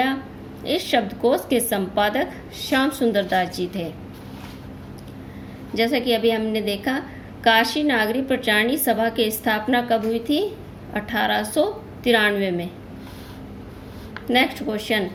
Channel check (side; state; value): both; identical; correlation 1.00